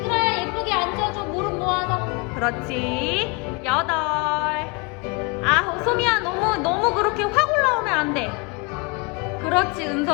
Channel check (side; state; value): right; quieter; 30.3 dB